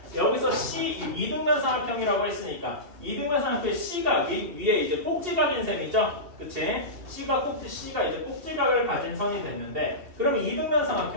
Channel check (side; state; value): left; late; 2.7 ms